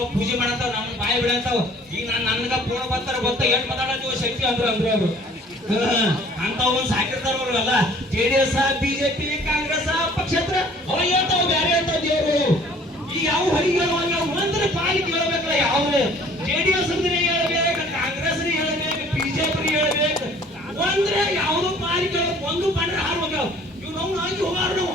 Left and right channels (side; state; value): both; normal; correlation 0.54